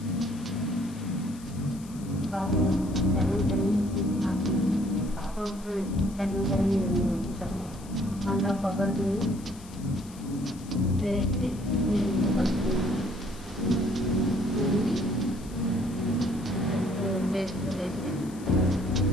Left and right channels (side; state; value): left; noise; hiss, 21 dB below the sound